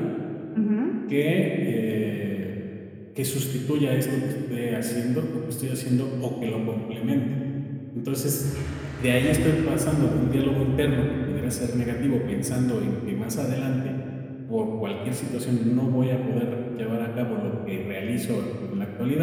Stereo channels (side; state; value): both; identical; correlation 1.00